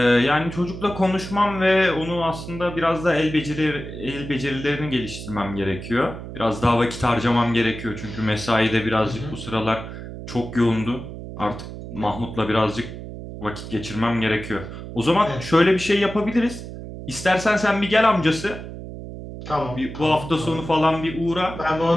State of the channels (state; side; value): noise; right; hum, 10 dB below the sound